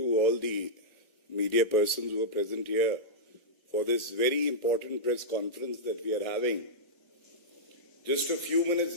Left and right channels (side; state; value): right; late; 1.4 ms